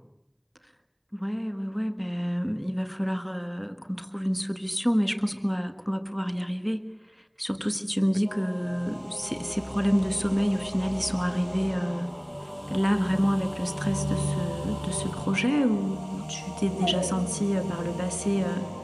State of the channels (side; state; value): both; identical; correlation 1.00